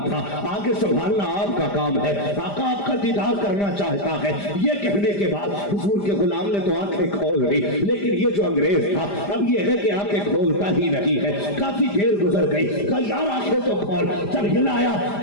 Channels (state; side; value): late; right; 5.0 ms